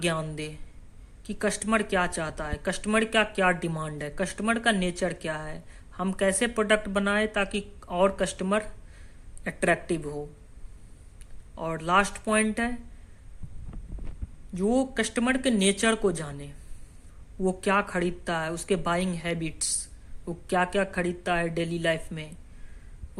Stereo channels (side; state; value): both; identical; correlation 1.00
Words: दे कि कस्टमर क्या चाहता है, कस्टमर का क्या डिमांड है, कस्टमर का नेचर क्या है, हम कैसे प्रोडक्ट बनाए ताकि और कस्टमर अट्रैक्टिव हो। और लास्ट पॉइंट है जो कस्टमर के नेचर को जाने, वो क्या खरीदता है, उसके बाइंग हैबिट्स, वो क्या क्या खरीदता है डेली लाइफ में,